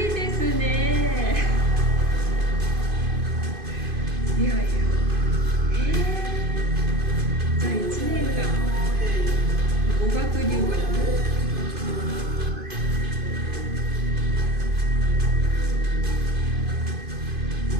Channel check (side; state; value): left; late; 2.5 ms